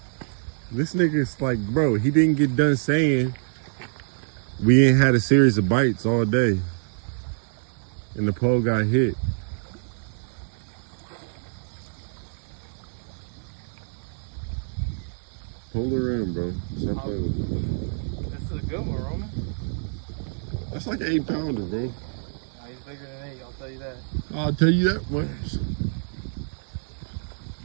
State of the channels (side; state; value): left; silent; digital silence